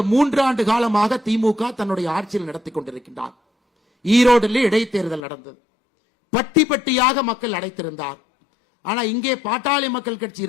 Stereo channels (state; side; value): drops out; right; at 5.2 s